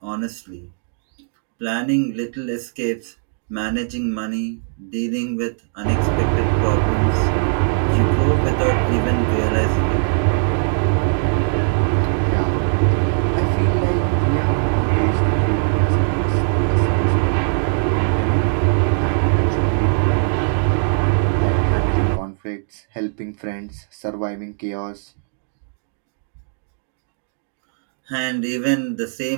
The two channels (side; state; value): left; silent; digital silence